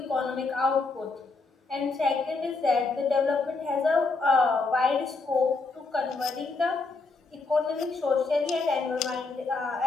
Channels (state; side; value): quieter; right; 3.8 dB